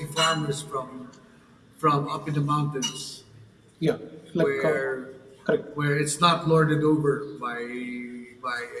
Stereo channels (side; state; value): both; identical; correlation 1.00